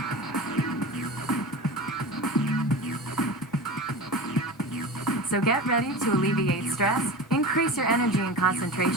So get ready to alleviate stress, increase your energy and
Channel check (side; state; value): both; normal; correlation 0.31